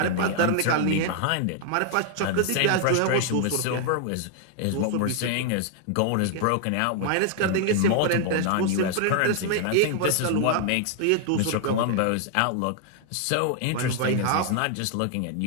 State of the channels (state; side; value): different; both; correlation 0.00